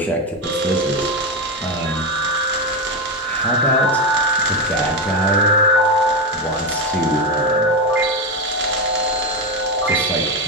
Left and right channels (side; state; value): both; normal; correlation 0.13